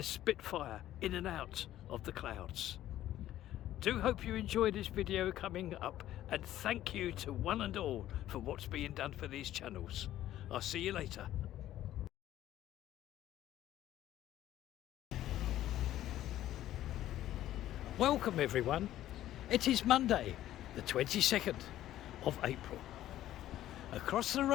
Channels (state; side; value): quieter; right; 13.2 dB